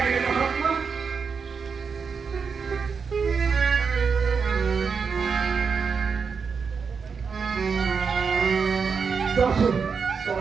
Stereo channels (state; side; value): quieter; left; 5.7 dB